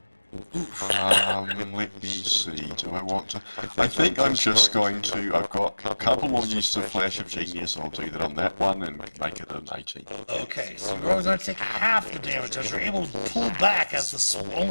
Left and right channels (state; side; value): inverted; both; correlation -1.00